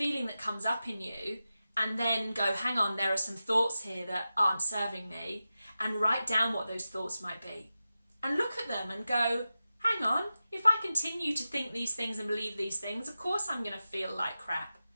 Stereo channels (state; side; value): inverted; both; correlation -0.93